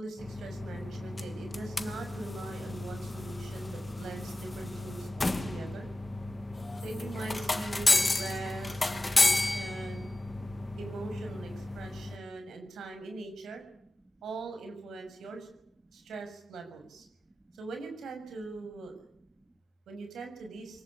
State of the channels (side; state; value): both; normal; correlation 0.95